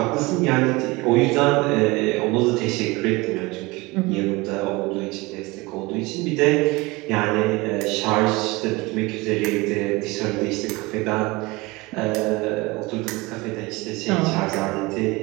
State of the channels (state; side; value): quieter; left; 23.2 dB